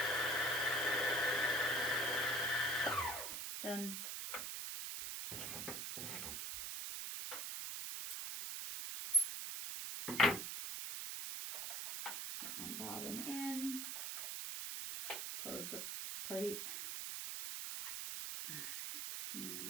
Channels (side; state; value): right; noise; hiss, 4 dB below the sound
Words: Done. Put my bobbin in. Close the plate. Alright,